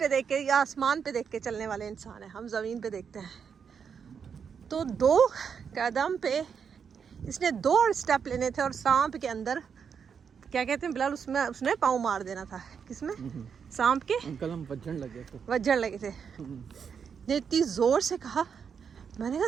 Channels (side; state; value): left; quieter; 6.8 dB